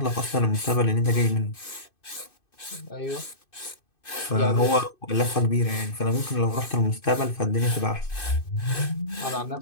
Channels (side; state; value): right; late; 2.6 ms